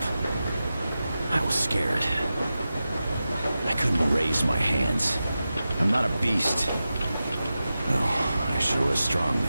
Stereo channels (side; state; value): both; inverted; correlation -0.93